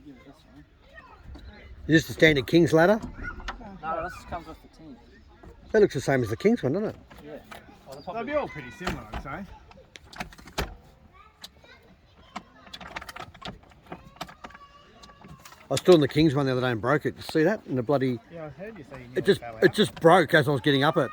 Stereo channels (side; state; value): both; identical; correlation 1.00